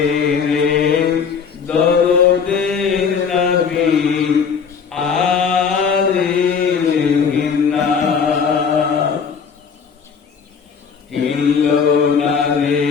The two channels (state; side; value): quieter; right; 6.2 dB